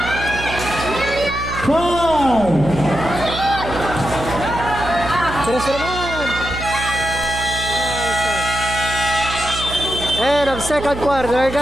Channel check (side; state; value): right; noise; hum, 9 dB below the sound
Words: 5. Tres na naman. Nice one. And ang second quarter